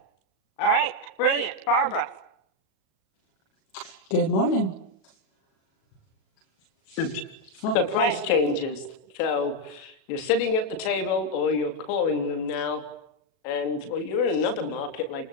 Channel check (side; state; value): right; late; 37 ms